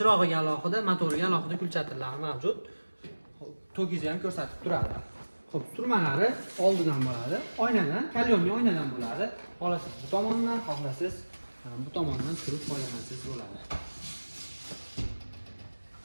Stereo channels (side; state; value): both; inverted; correlation -1.00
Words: alohida, motoriga alohida kulchatirlari mavjud. Tokizni ham ko'rsatib turadi. Xo'p, surmalari oldidan bo'ladi. Oynadan, kalyonli oynadan bo'ladi. Xohlasangiz bu tomondan, xohlasangiz bu tomondan surib foydalansangiz bo'ladi.